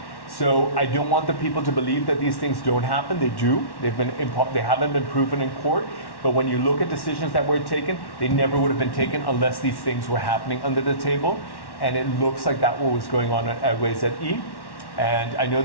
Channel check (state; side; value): late; right; 1.1 ms